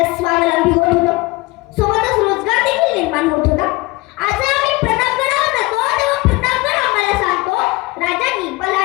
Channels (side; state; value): right; quieter; 22.5 dB